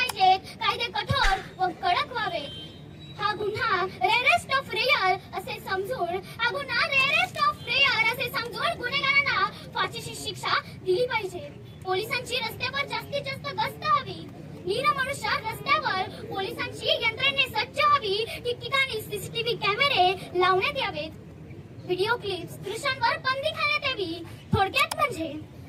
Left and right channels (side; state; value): both; identical; correlation 1.00